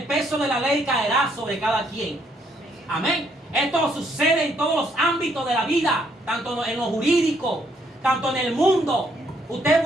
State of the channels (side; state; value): both; normal; correlation 0.70